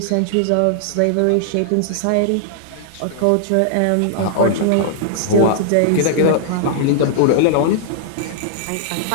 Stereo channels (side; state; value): both; different; correlation -0.01